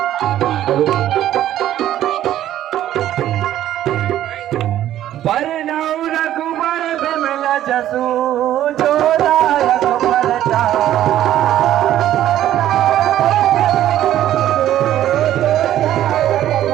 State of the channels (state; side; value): quieter; left; 12.4 dB